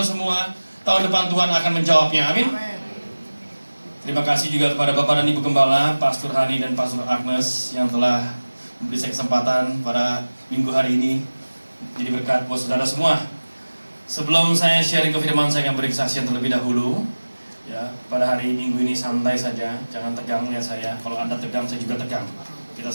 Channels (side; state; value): both; inverted; correlation -1.00